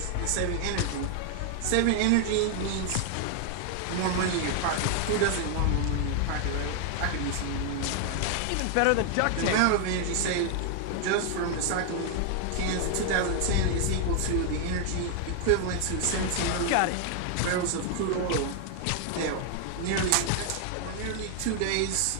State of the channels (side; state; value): both; different; correlation 0.00